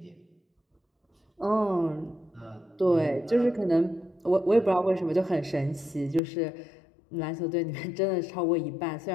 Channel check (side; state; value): right; drops out; at 6.2 s